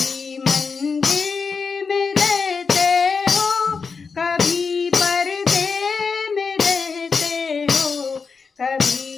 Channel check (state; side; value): quieter; right; 5.2 dB